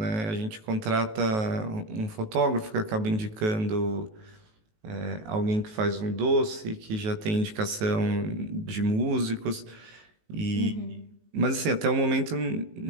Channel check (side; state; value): left; late; 19 ms